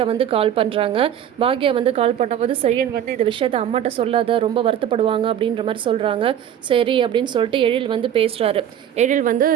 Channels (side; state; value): left; quieter; 10.0 dB